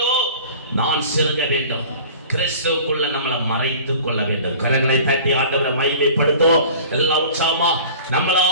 நான் சிறுக வேண்டும். கிறிஸ்துவுக்குள்ள நம்மளை மறைத்துக் கொள்ள வேண்டும். கரங்களை தட்டி ஆண்டவரை மகிமைப்படுத்துவோம். எல்லாம் உற்சாகமா நம்மளை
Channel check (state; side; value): inverted; both; correlation -0.43